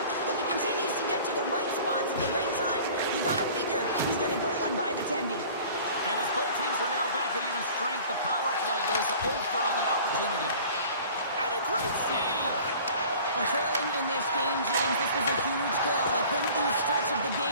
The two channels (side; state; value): both; inverted; correlation -0.46